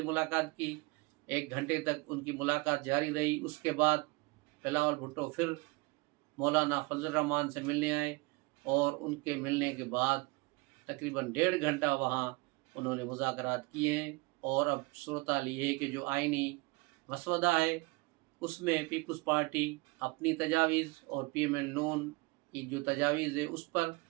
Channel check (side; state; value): left; quieter; 24.9 dB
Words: ملاقات کی، 1 گھنٹے تک ان کی ملاقات جاری رہی۔ اس کے بعد بلاول بھٹو پھر مولانا فضل الرحمان سے ملنے آئے، اور ان کے ملنے کے بعد تقریباً 1.5 گھنٹہ وہاں انہوں نے مذاکرات کیے ہیں۔ اور اب صورتحال یہ ہے کہ جو آئینی مسودہ ہے اس میں پیپلز پارٹی اپنی تجاویز اور پی ایم ایل نون کی جو تجاویز ہے اس پر،